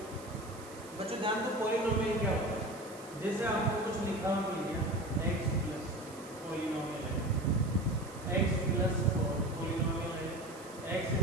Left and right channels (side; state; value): right; noise; hiss, 19 dB below the sound